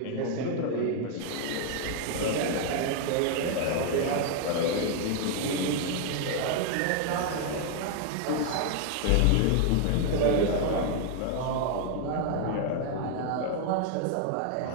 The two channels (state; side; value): different; both; correlation 0.00